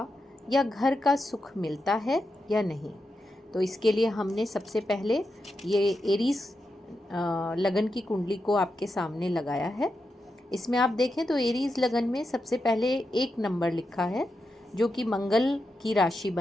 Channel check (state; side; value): normal; both; correlation 0.87